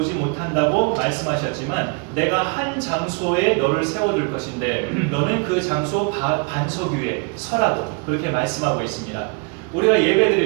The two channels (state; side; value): quieter; left; 33.9 dB